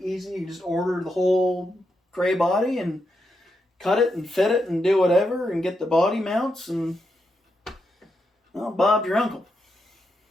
easy. You just order the whole gray body and cut it and fit it and do whatever and get the body mounts and, well, Bob's your uncle.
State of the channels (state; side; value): normal; both; correlation 0.83